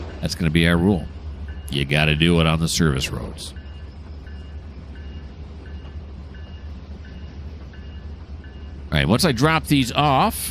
rule. You got to do it on the service roads. All right, once I drop these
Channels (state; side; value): identical; both; correlation 1.00